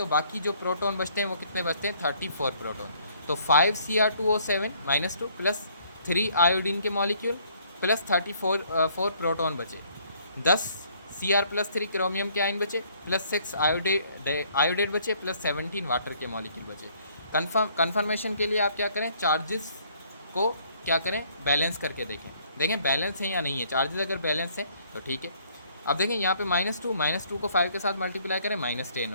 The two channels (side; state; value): both; inverted; correlation -0.63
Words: बाकी जो प्रोटॉन बचते हैं वो कितने बचते हैं, 34 प्रोटॉन। तो 5Cr2O7 -2 प्लस 3 आयोडीन के मॉलिक्यूल प्लस 4 प्रोटॉन बचे, 10 Cr+3 क्रोमियम के आयन बचे, प्लस 6 आयोडेट बचे, प्लस 17 वाटर के मॉलिक्यूल बचे। कन्फर्मेशन के लिए आप क्या करें, चार्जेस को क्या करें, बैलेंस करके देखें बैलेंस है या नहीं है। चार्जेस अगर बैलेंस है तो ठीक है। अब देखें यहाँ पे -2 को 5 के साथ मल्टीप्लाई करें, -10